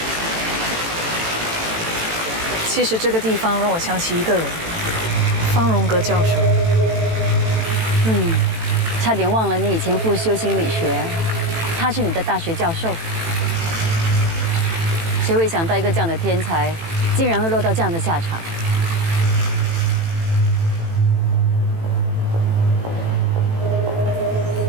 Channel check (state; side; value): late; left; 18 ms